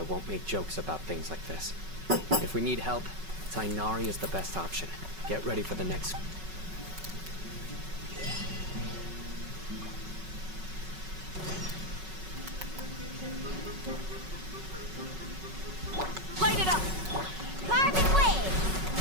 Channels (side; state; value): left; late; 5.3 ms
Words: won't make jokes about things like this. If we need help, Tainari is the best option. Get ready for the next... Light it up! Carbon wave!